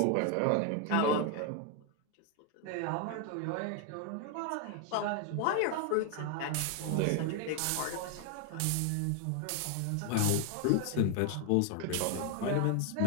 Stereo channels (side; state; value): both; different; correlation 0.00